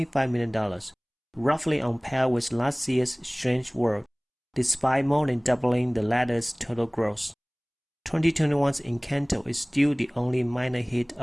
million, roughly on par with last year's Strange World, despite more than doubling the latter's total gross. 2021's Incl is still the only minor hit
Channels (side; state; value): both; identical; correlation 1.00